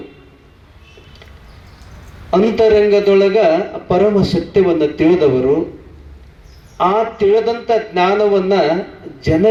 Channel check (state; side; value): identical; both; correlation 1.00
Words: ಅಂತರಂಗದೊಳಗ ಪರಮ ಸತ್ಯವನ್ನು ತಿಳಿದವರು, ಆ ತಿಳಿದಂಥ ಜ್ಞಾನವನ್ನ